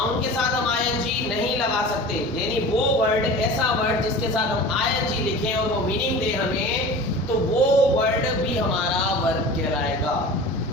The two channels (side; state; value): both; normal; correlation 0.37